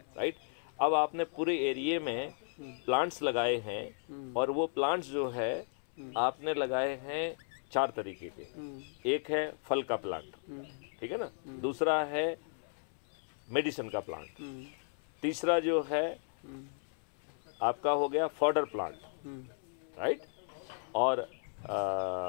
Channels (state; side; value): silent; right; 54 dB below the other